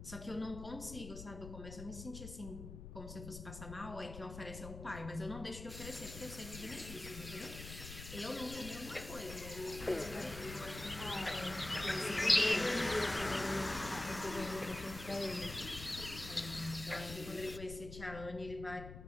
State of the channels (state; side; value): noise; left; rumble, 10 dB below the sound